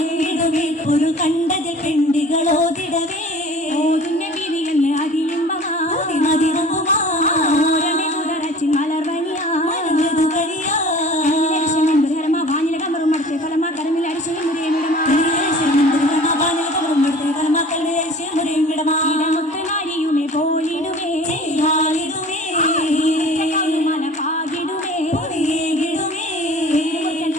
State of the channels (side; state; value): both; normal; correlation 0.44